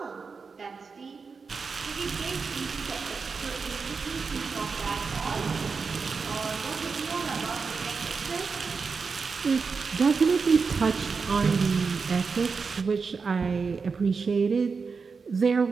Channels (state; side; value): quieter; left; 5.0 dB